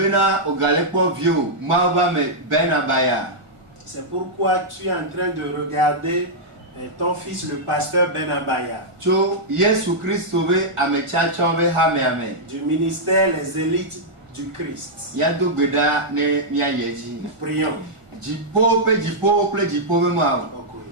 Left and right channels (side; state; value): left; late; 1.5 ms